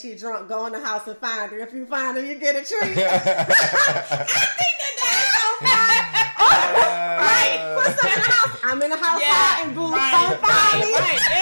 drunk, go in the house and find her. If you find her, you get a treat. I think that's so fun. Right, put some in the house. I'm in the house and boo, don't find me. Right,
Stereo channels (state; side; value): inverted; both; correlation -1.00